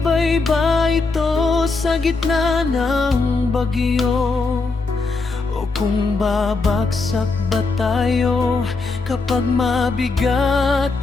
ba ito sa gitna ng bagyo, o kung babagsak ba tayo kapag mabigat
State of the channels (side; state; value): right; quieter; 3.9 dB